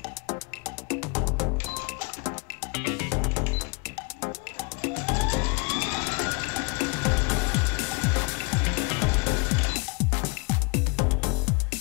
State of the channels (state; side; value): quieter; right; 30.7 dB